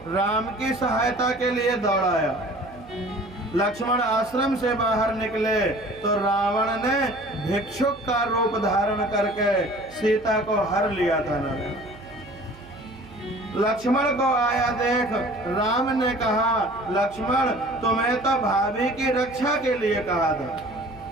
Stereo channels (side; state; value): right; noise; hum, 22 dB below the sound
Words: राम की सहायता के लिए दौड़ाया। लक्ष्मण आश्रम से बाहर निकले तो रावण ने भिक्षुक का रूप धारण करके सीता को हर लिया था नारायण। लक्ष्मण को आया देख राम ने कहा लक्ष्मण तुम्हें तो भाभी की रक्षा के लिए कहा था,